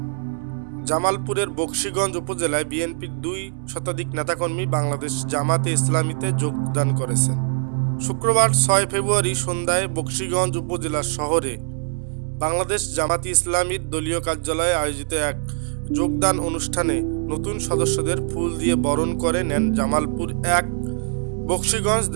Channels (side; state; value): left; silent; digital silence